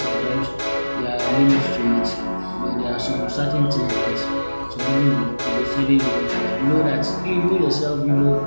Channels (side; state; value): both; inverted; correlation -1.00